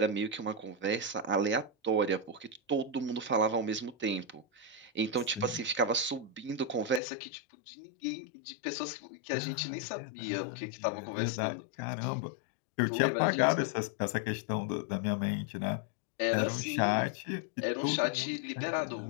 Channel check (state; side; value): drops out; right; at 7.0 s